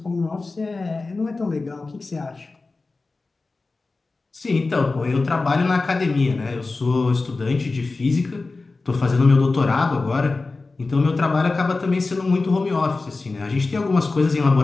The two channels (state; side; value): quieter; right; 3.6 dB